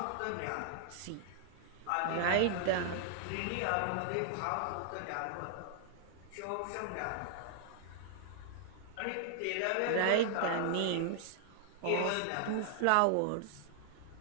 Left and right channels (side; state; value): both; different; correlation 0.00